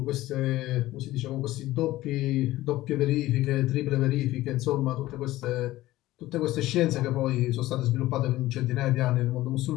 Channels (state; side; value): quieter; right; 16.6 dB